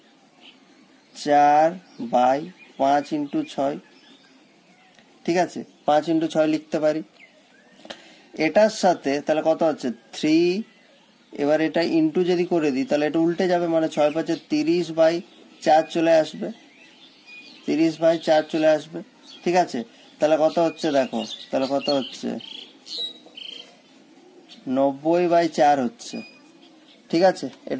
4/5 × 6, ঠিক আছে, 5 × 6 লিখতে পারি। এটার সাথে তাহলে কত হচ্ছে 3, এবার এটা ইন্টু যদি করে দিই তাহলে এটা উল্টে যাবে, মানে 6 × 5 = 30/4 চলে আসবে, 30/4 চলে আসবে। ঠিক আছে, তাহলে কত হচ্ছে দেখো, তাহলে কত হচ্ছে 90/4 হচ্ছে। ঠিক আছে,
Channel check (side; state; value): both; identical; correlation 1.00